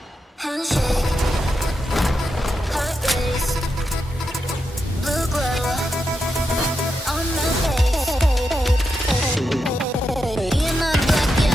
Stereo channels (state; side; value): normal; both; correlation 0.86